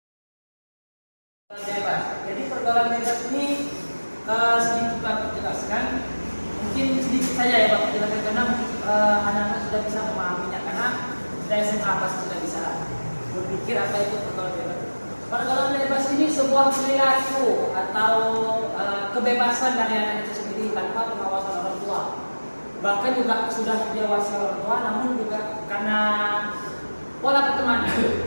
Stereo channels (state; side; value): inverted; both; correlation -1.00